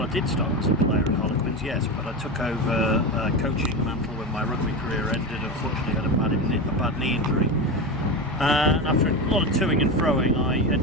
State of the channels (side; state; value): both; normal; correlation 0.20